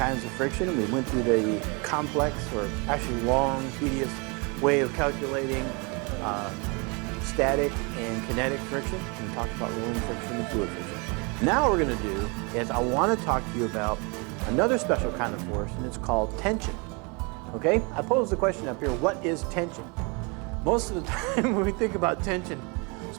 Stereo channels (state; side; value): quieter; left; 31.0 dB